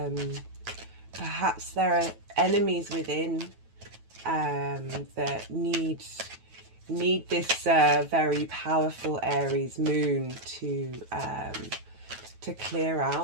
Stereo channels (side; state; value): left; late; 9.2 ms